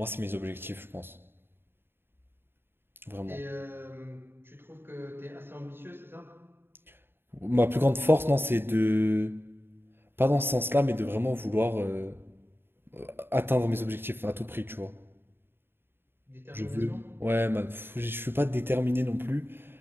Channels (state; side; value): late; left; 0.11 ms